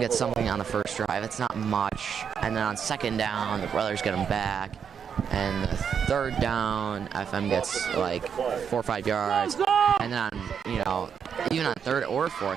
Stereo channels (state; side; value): quieter; left; 7.3 dB